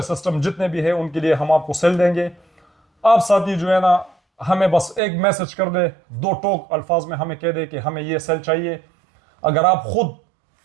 सिस्टम जितने भी है उनके लिए हम आपको सेल देंगे। आप साथी जो है ना हमें बस एक मैसेज कर दे, 2 टोक अल्फाज में हमें कह दे कि हमें ये सेल चाहिए। अगर आप खुद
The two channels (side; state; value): left; drops out; at 5.0 s